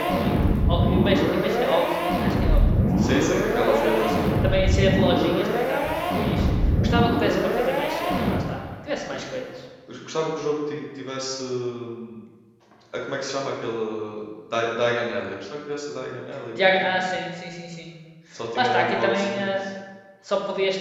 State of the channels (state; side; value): identical; both; correlation 1.00